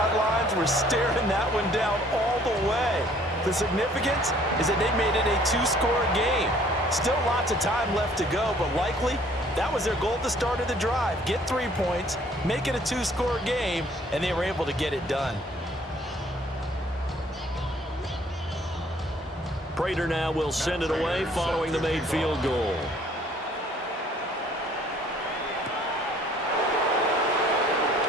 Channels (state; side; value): normal; both; correlation 0.58